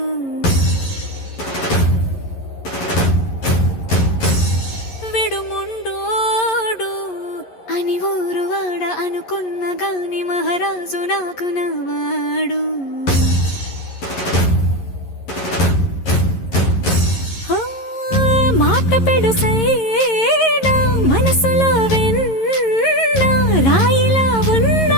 విడు ముండోడు అని ఊరు వాడ అనుకున్న గాని మహారాజు నాకు నవ్వాడు. మాట పెడుసైనా మనసులో వెన్న రాయిలా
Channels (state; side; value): late; right; 11 ms